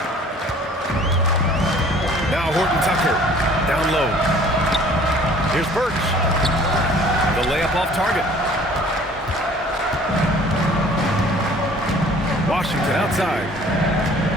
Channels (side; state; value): both; normal; correlation 0.52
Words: Now Horton Tucker, down low. Here's Birch. The layup off target. Washington outside.